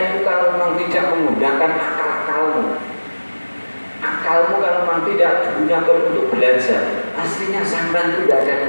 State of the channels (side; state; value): both; inverted; correlation -1.00